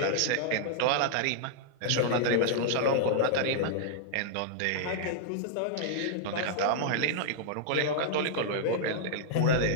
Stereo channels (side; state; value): both; different; correlation -0.01